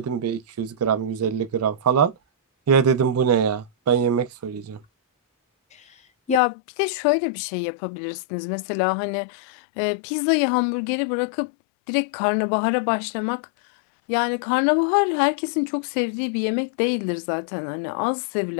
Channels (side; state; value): right; drops out; at 6.4 s